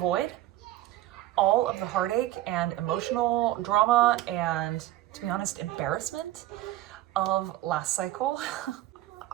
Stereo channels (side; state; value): left; quieter; 15.1 dB